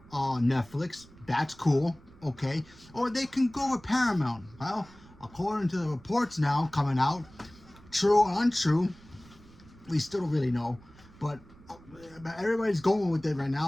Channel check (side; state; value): right; noise; rumble, 23 dB below the sound